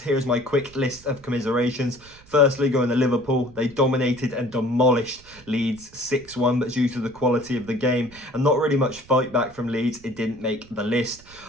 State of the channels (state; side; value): noise; right; rumble, 24 dB below the sound